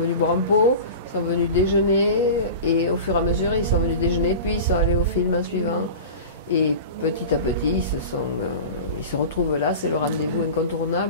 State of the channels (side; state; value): both; inverted; correlation -0.33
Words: boire un pot, ils sont venus déjeuner, et au fur et à mesure ils sont venus déjeuner, puis ils sont allés au film en suivant. Et petit à petit, ils se retrouvent là, c'est le rendez-vous